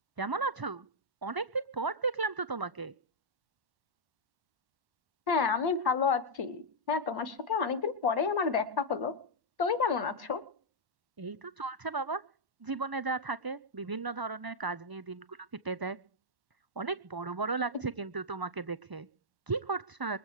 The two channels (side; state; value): left; late; 1.1 ms